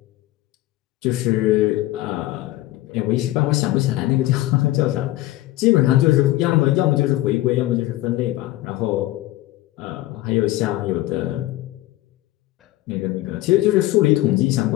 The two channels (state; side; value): quieter; right; 16.7 dB